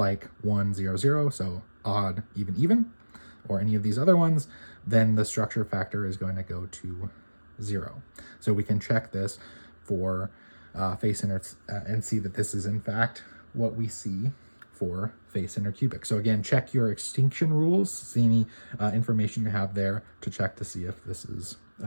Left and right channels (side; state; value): both; inverted; correlation -1.00